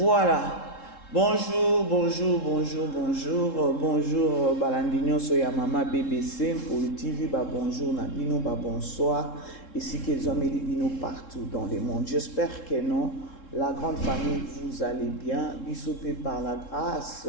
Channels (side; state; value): right; late; 3.7 ms